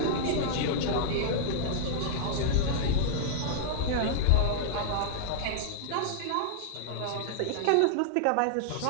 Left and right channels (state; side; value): different; both; correlation -0.02